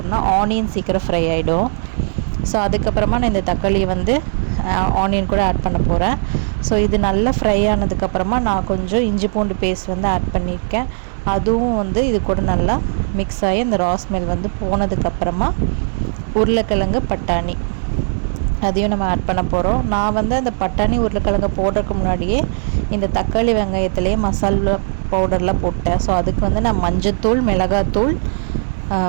ஆனியன் சீக்கிரம் ஃப்ரை ஆகிடும். ஸோ அதுக்கப்புறமா நான் இந்த தக்காளியை வந்து ஆனியன் கூட ஆட் பண்ண போகிறேன். ஸோ இது நல்லா ஃப்ரை ஆனதுக்கப்புறமா நான் கொஞ்சம் இஞ்சி பூண்டு பேஸ்ட் வந்து ஆட் பண்ணியிருக்கேன். அதுவும் வந்து இது கூட நல்லா மிக்ஸ் ஆகி அந்த ரா ஸ்மெல் வந்து போனதுக்கப்புறமா உருளைக்கிழங்கு, பட்டாணி அதையும் நம்ம ஆட் பண்ண போகிறோம். நான் வந்து அந்த பட்டாணி உருளைக்கிழங்கு போடுறதுக்கு முன்னாடியே இந்த தக்காளி வெங்காயத்துலேயே மசாலா பவுடர்லாம் போட்டேன். ஸோ அதுக்கு வந்து நான் மஞ்சத்தூள், மிளகாத்தூள்,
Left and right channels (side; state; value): left; silent; digital silence